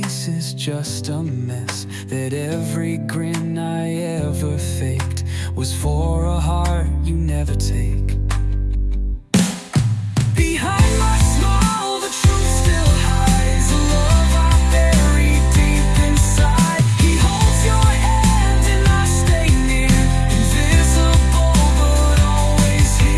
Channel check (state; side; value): identical; both; correlation 1.00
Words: is just a mess, that every grin I ever faked was for a heart you never take. Behind my smile, the truth still hides, a love I buried deep inside. He holds your hand and I stay near, invisible but always